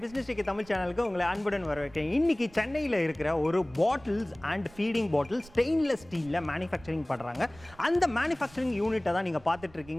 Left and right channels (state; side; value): noise; right; rumble, 23 dB below the sound